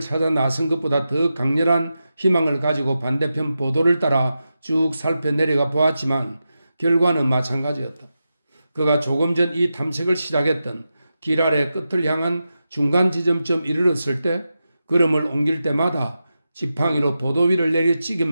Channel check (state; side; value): inverted; both; correlation -0.90